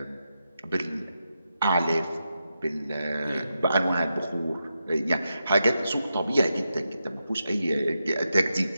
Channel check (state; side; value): inverted; both; correlation -0.87